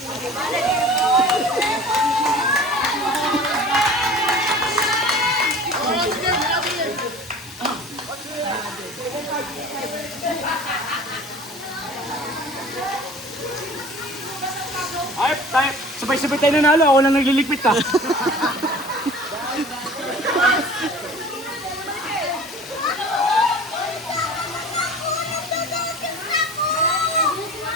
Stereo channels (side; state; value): both; normal; correlation 0.42